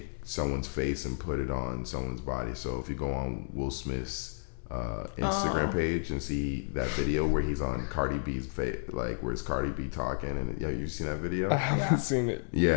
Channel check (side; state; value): right; silent; 57 dB below the other